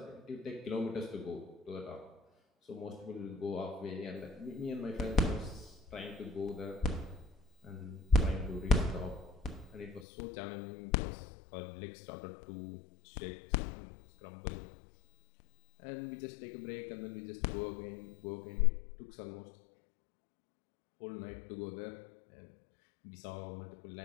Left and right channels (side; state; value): right; drops out; at 10.1 s